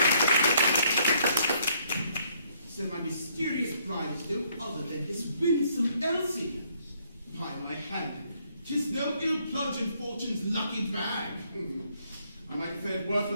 So my mysterious bride is no other than this winsome Elsie. By my hand, 'tis no ill plunge in fortune's lucky bag. I might have fared worse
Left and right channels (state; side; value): inverted; both; correlation -0.68